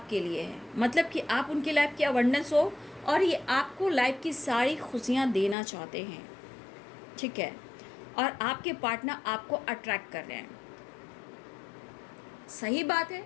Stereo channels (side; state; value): right; drops out; at 5.6 s